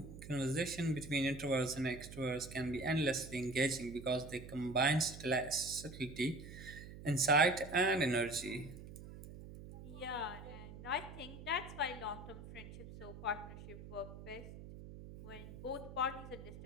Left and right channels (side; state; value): right; noise; hum, 13 dB below the sound